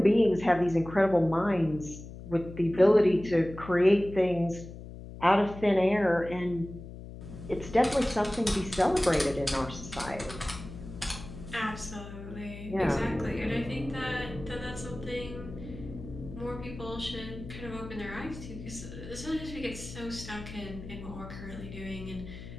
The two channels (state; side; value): noise; left; hum, 13 dB below the sound